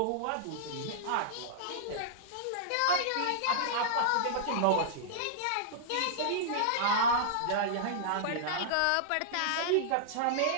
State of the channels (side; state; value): both; different; correlation -0.02